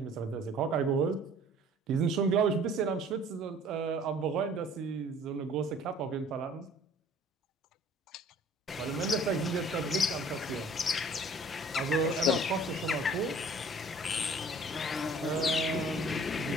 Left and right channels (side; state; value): both; normal; correlation 0.52